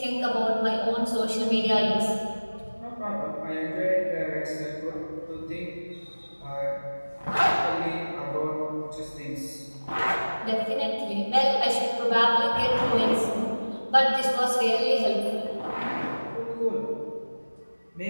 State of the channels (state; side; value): inverted; both; correlation -1.00